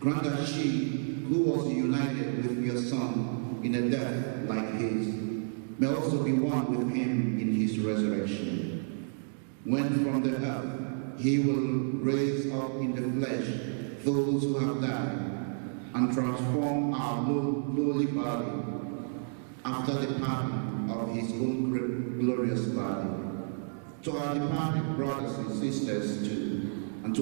that she, who was united with your Son in a death like his, may also be one with him in his resurrection. When from the earth he will raise up in the flesh those who have died, and transform our lowly body after the pattern of his own glorious body. To our departed brothers and sisters too, and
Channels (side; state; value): left; silent; digital silence